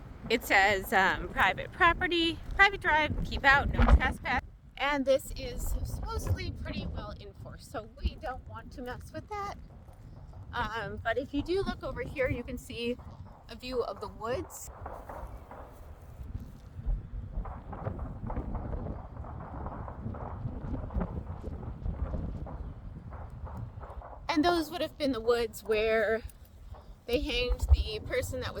it says private property, private drive, keep out, no trespass. And this is supposedly pretty well enforced, so we don't want to mess with that. But if you do look over here, you can see a view of the woods. And those would have been the woods where they hanged the person that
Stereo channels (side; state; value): both; identical; correlation 1.00